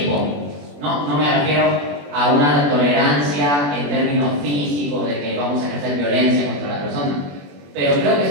No me refiero a una tolerancia en términos físicos de que vamos a ejercer violencia contra la persona. Pero creo que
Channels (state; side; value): late; left; 21 ms